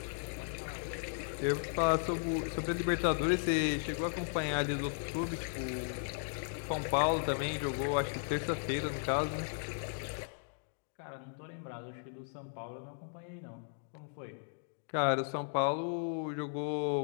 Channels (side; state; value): right; silent; digital silence